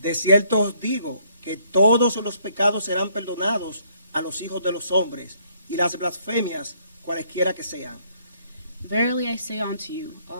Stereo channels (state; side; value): inverted; both; correlation -0.67